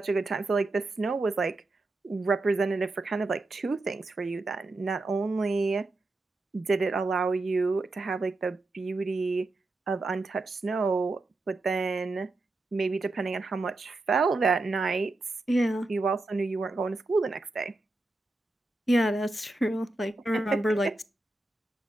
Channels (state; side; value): quieter; left; 3.0 dB